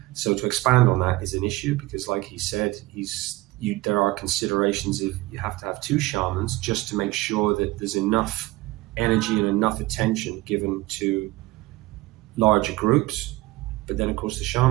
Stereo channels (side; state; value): left; quieter; 19.4 dB